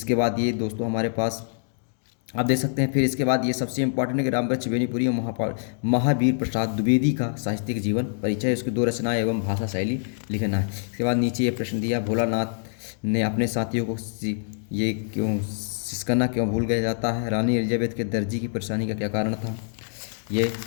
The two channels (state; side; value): silent; right; digital silence